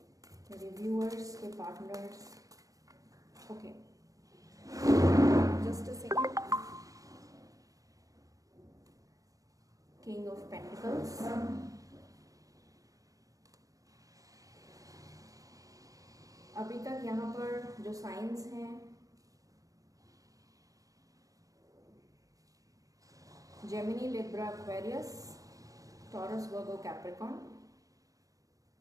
मेरे व्यूअर्स के partners, okay, just a second. King of pentacles, अभी तक यहाँ पर जो साइंस हैं, Gemini, Libra, Aquarius, taurus, Virgo, Capricorn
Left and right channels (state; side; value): late; left; 0.17 ms